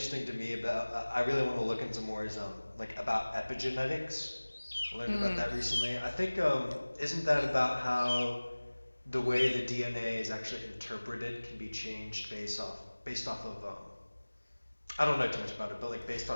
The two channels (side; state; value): both; inverted; correlation -1.00